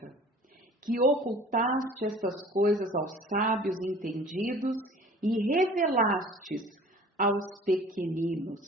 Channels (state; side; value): normal; both; correlation 0.47